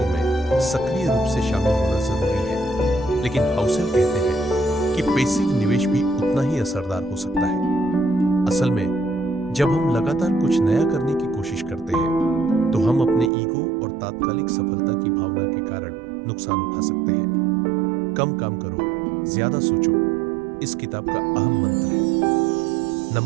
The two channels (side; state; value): left; drops out; at 13.3 s